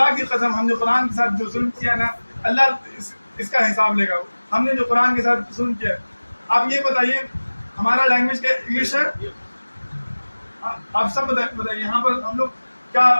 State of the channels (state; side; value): inverted; both; correlation -1.00